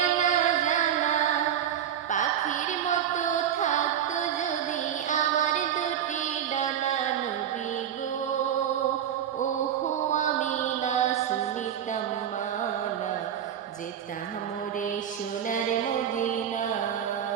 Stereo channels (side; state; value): left; quieter; 9.7 dB